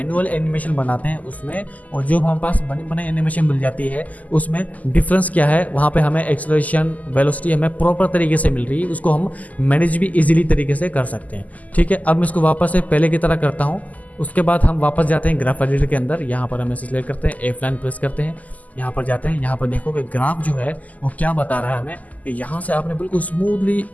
एनिमेशन बनाते हैं उसमें और जो हमारे पास बने बने एनिमेशन मिल जाती है उसमें डिफरेंस क्या है। वहाँ पे हमें एक्सेलरेशन वेलोसिटी हमें प्रॉपर तरीके से मिल रही है, उसको हम मैनेज भी इजीली तरीके से कर सकते हैं, ठीक है। अब मैं इसको वापस से पहले की तरह करता हूँ। उसके बाद हम वापस जाते हैं ग्राफ एडिटर के अंदर, यहाँ पर हम इसे सिलेक्ट करते हैं, F9 प्रेस करते हैं, यहाँ पर जाते हैं। यहाँ पर देखो कि ग्राफ जो है वो क्या बता रहा है हमें कि यहाँ से आपने बिल्कुल स्मूथली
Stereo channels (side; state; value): right; late; 0.077 ms